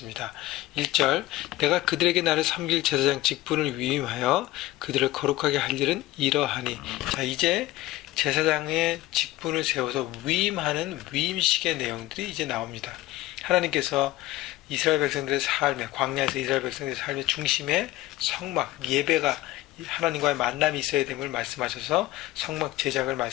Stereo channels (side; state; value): right; quieter; 17.1 dB